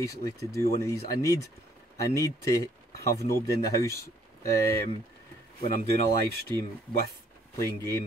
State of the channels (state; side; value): normal; both; correlation 0.64